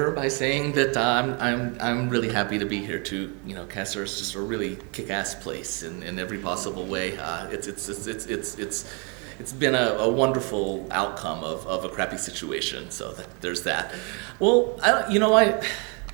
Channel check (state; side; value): quieter; left; 34.3 dB